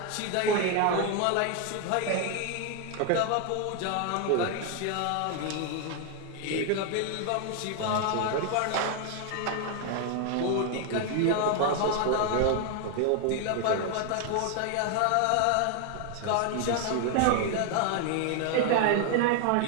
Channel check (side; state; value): both; different; correlation 0.00